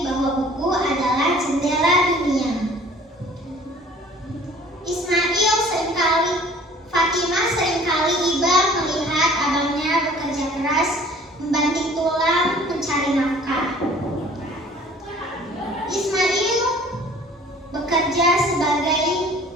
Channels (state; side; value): normal; both; correlation 0.50